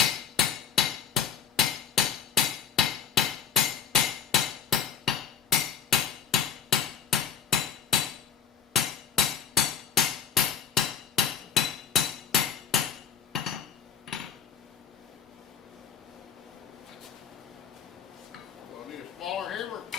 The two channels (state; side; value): quieter; right; 7.4 dB